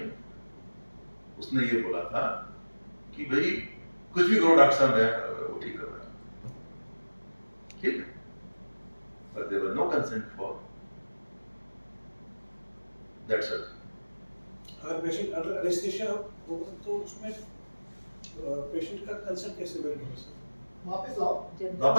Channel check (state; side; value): inverted; both; correlation -1.00